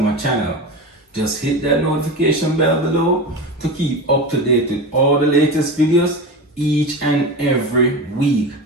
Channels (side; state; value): both; normal; correlation 0.25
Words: channel. Just hit that notification bell below to keep up to date with all the latest videos each and every week.